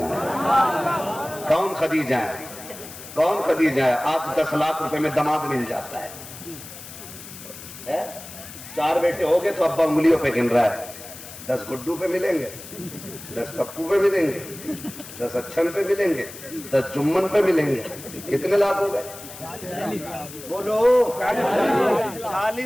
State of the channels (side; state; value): left; noise; hiss, 14 dB below the sound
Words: ہے۔ کون خدیجہ ہے؟ کون خدیجہ ہے؟ آج 10 لاکھ روپے میں داماد مل جاتا ہے۔ 4 بیٹے ہو گئے تو ابا انگلیوں پہ گن رہا ہے، 10 گڈو پہ ملیں گے، 10 پپو پہ ملیں گے، 10 اچھن پہ ملیں گے، 10 جمن پہ ملیں گے۔ کتنے لاکھ ہو گئے؟ بولو